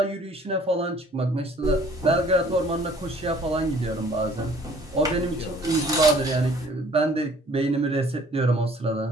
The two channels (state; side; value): normal; both; correlation 0.55